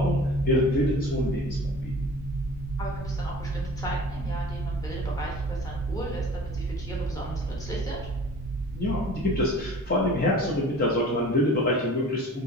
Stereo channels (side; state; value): both; normal; correlation 0.43